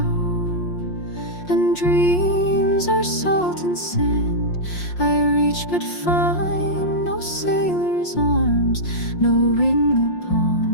and dreams are salt and sand. I reach but find no sailor's arms, no ring upon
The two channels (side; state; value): right; late; 5.6 ms